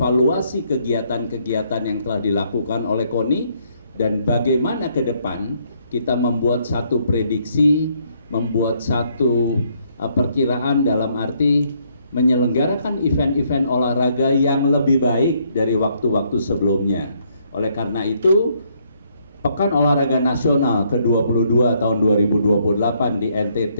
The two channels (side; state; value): both; inverted; correlation -0.70